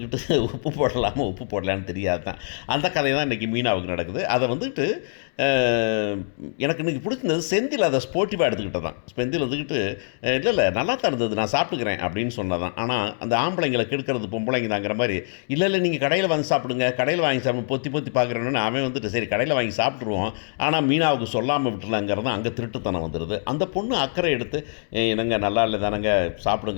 உப்பு போடலான்னு தெரியாது தான். அந்த கதை தான் இன்றைக்கி மீனாவுக்கு நடக்குது. அதை வந்துட்டு எனக்கு இன்றைக்கி பிடிச்சிருந்தது செந்தில் அதை ஸ்போர்ட்டிவாக எடுத்துக்கிட்டது தான். செந்தில் வந்துக்கிட்டு இல்லை நல்லா தான் இருந்தது, நான் சாப்பிட்டுக்கிறேன் அப்படின்னு சொன்னதான். ஆனால் அந்த ஆம்பளைங்களை கெடுக்கிறது பொம்பளைங்க தாங்கிற மாதிரி இல்லை நீங்கள் கடையில் வாங்கி சாப்பிடுங்க, கடையில் வாங்கி சாப்பிடு பொத்தி பார்க்குறேன்னு அவன் வந்துட்டு சரி கடையில் வாங்கி சாப்பிட்ருவோம், ஆனால் மீனாவுக்கு சொல்லாமல் விட்டுலாங்கிறது அங்கே திருட்டுத்தனம் வந்துடுது. அந்த பொண்ணு அக்கறை எடுத்து என்னங்க நல்லா இல்லை தானங்க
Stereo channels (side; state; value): right; silent; 63 dB below the other